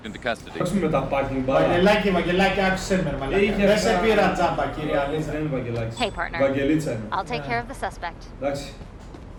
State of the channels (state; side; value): identical; both; correlation 1.00